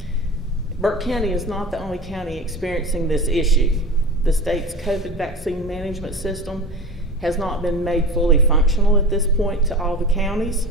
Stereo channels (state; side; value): normal; both; correlation 0.32